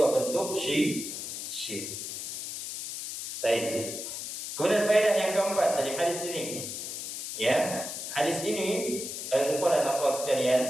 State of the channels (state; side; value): noise; left; hiss, 6 dB below the sound